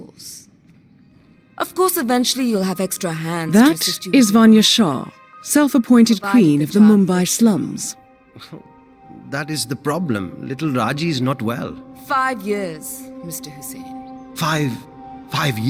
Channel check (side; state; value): both; identical; correlation 1.00